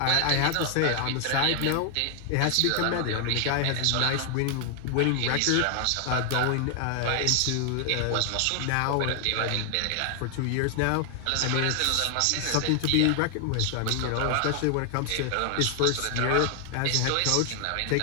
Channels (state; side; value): different; both; correlation 0.00